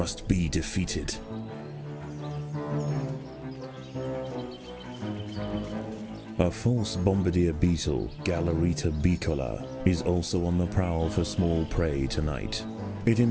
be defeated. A false bombardier beetle, Galerita bicola, is also on the prowl for small prey tonight. It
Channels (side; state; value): both; identical; correlation 1.00